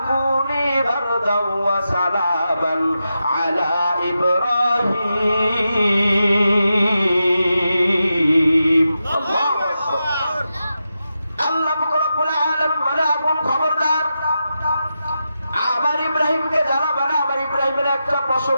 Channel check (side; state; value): both; inverted; correlation -0.89